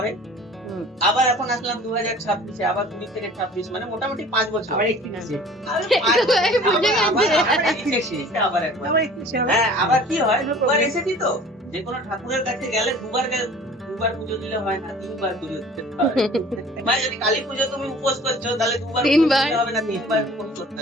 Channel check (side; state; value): both; normal; correlation 0.47